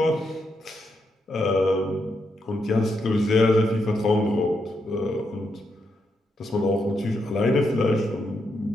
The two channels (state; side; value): normal; both; correlation 0.81